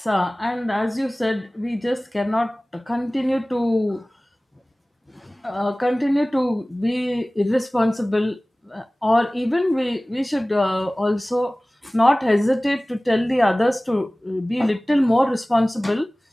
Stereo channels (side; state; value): both; normal; correlation 0.98